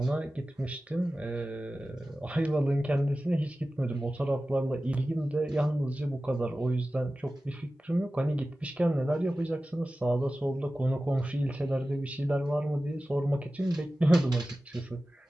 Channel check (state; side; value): normal; both; correlation 0.95